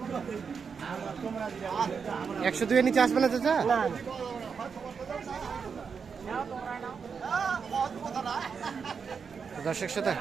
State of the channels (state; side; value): quieter; left; 6.0 dB